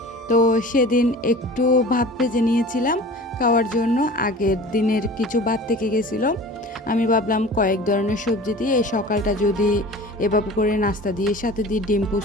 তো সেদিন একটু ভাত ভেজে নিয়েছিলাম খাওয়ার জন্য, আগের দিনের কিছু ভাত থেকে গেছিলো। আমি ভাবলাম কয়েক ধরনের সবজি দিয়ে এই সকালটা যদি এভাবে করে নাস্তা দিয়ে সাথে দিয়ে ডিম পুষ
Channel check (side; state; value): both; normal; correlation 0.40